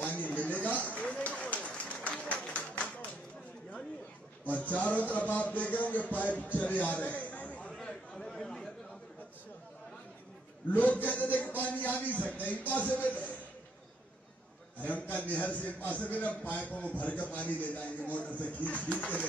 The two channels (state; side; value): normal; both; correlation 0.72